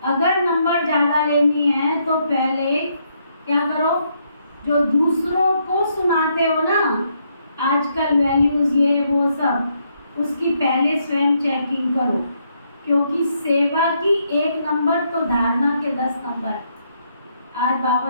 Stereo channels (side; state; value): both; inverted; correlation -0.75